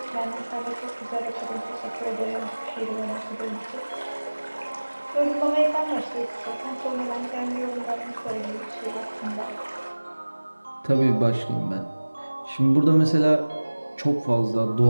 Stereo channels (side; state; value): both; inverted; correlation -1.00